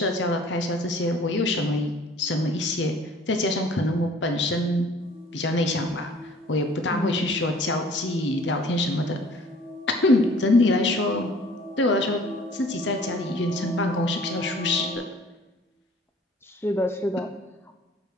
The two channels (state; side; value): normal; both; correlation 0.52